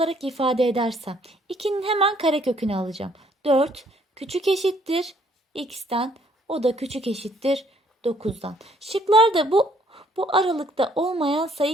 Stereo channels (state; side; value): normal; both; correlation 0.64